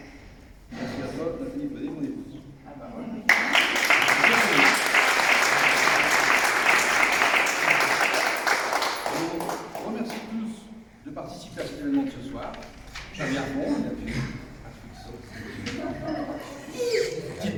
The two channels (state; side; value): identical; both; correlation 1.00